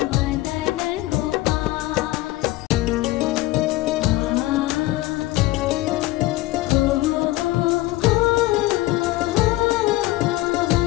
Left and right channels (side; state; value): right; quieter; 18.2 dB